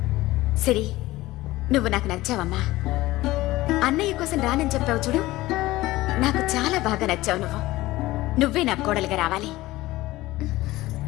సరే, నువ్వు నాకు నచ్చావమ్మా. అన్నయ్య కోసం రానని చెప్పావు చూడు, నాకు చాలా బాగా నచ్చావు నువ్వు. నువ్వే నా కోడలుగా రావాలి.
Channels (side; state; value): right; quieter; 18.0 dB